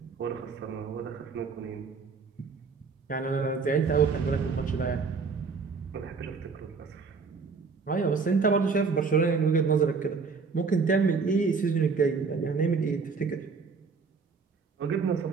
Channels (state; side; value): quieter; left; 5.0 dB